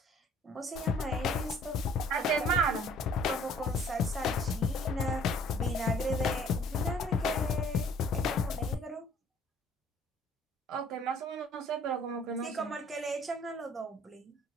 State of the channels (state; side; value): normal; both; correlation 0.56